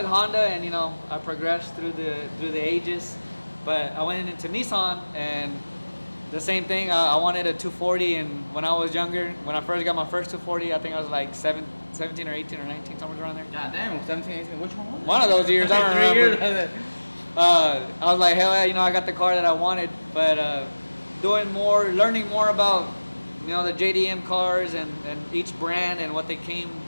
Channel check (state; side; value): inverted; both; correlation -1.00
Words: Honda, and you know I progressed through the ages, but I went into Nissan, and the same thing. I wanted a 240, and when I was younger, when I first got my first 240, I think I was like 17 or 18 or 19, somewhere around there. God damn, 17, 18, which one was it? One of those years, I don't 3 remember. years. I was like, hell yeah, you know, I got the car that I wanted, but learning more about, you know, the JDM cars and each brand and what they came